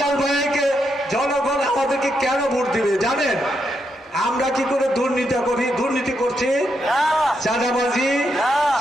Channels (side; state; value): both; normal; correlation 0.81